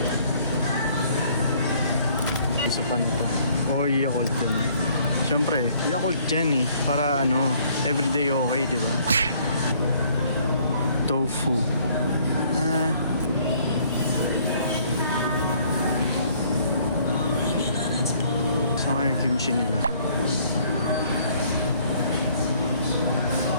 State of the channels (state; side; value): inverted; both; correlation -0.61